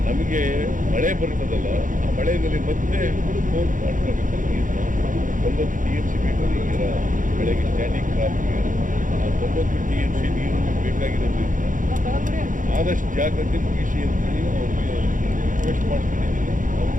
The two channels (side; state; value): left; late; 0.38 ms